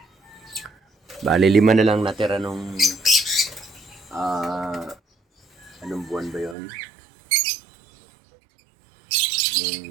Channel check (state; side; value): drops out; left; at 6.6 s